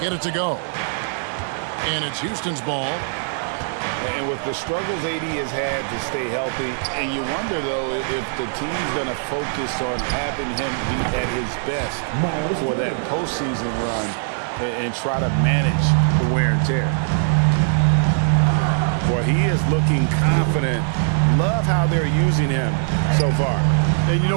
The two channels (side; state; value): left; silent; 57 dB below the other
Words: it to go. And it's Houston's ball. And with the struggles AD has had to stay healthy, and you wonder, though, if the team's going to focus on having him be at his best for that postseason run and try to manage the wear and tear. Boy, he is looking confident. Love how they're using him so far. And you